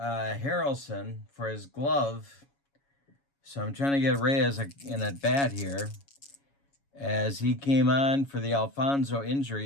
for his glove, so I'm trying to get Reyes in at bat here, as he came on for the Alfonso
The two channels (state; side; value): late; right; 7.2 ms